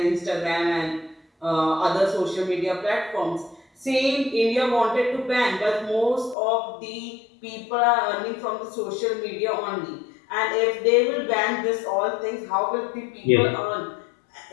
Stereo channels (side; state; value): right; drops out; at 6.4 s